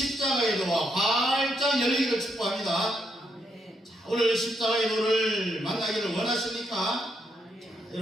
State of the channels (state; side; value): normal; both; correlation 0.78